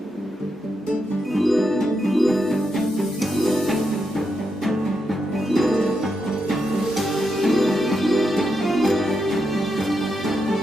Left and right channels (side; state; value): both; normal; correlation 0.84